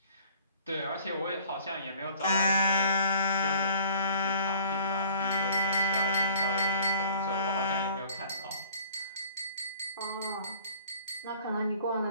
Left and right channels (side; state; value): both; inverted; correlation -0.52